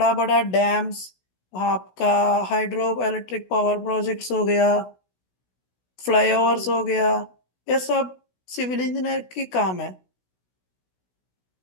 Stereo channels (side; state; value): right; late; 16 ms